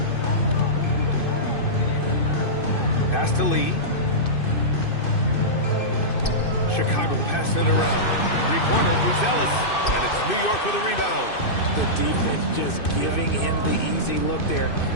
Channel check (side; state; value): right; late; 2.6 ms